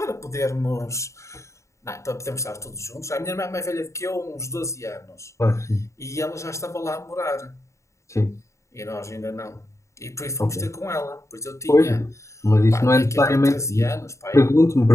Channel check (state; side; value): late; right; 0.14 ms